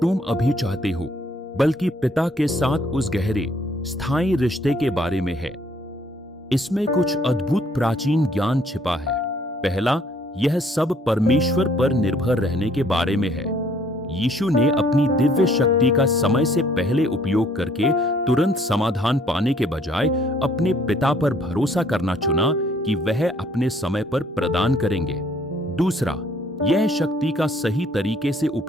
अभी चाहते हो, बल्कि पिता के साथ उस गहरे, स्थायी रिश्ते के बारे में है। इसमें कुछ अद्भुत प्राचीन ज्ञान छिपा है। पहला, यह सब परमेश्वर पर निर्भर रहने के बारे में है। यीशु ने अपनी दिव्य शक्ति का समय से पहले उपयोग करके तुरंत समाधान पाने के बजाय अपने पिता पर भरोसा करना चुना कि वह अपने समय पर प्रदान करेंगे। दूसरा, यह शक्ति का सही तरीके से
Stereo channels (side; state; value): both; normal; correlation 0.63